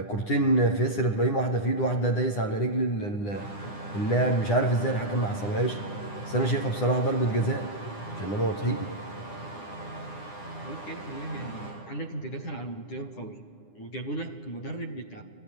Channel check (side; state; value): right; late; 9.9 ms